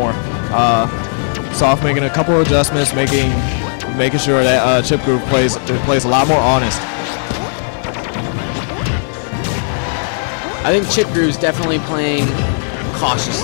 Soft making a couple of adjustments, making sure that ChipGroove plays a lot more honest. I think ChipGroove's definitely playing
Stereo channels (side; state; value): right; silent; digital silence